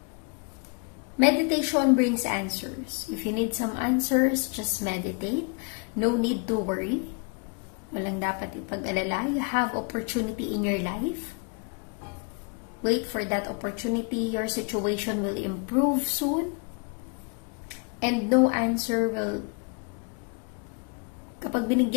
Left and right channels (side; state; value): right; quieter; 33.4 dB